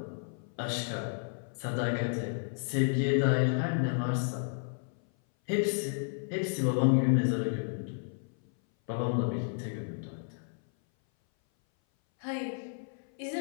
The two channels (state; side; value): silent; right; 56 dB below the other